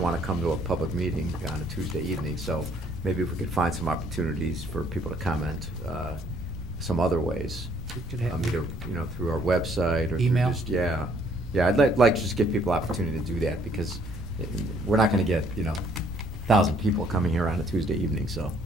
want to come to a public meeting on a Tuesday evening, so maybe if we could find some opportunities for people to comment some other ways. We could have Either, through our website or email. through just, yeah. Yeah, I'd like to just give people opportunity to do that, because we're not going to get, 1,000 people coming here on a Tuesday evening, so.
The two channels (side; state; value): both; normal; correlation 0.64